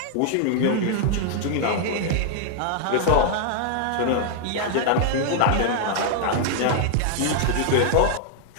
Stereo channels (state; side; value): different; both; correlation 0.00